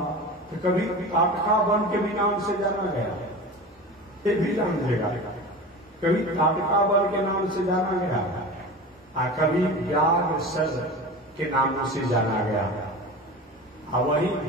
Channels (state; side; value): normal; both; correlation 0.32